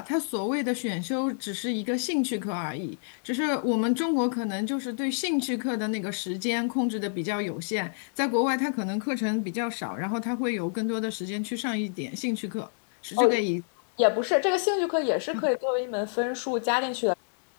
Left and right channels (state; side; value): silent; right; digital silence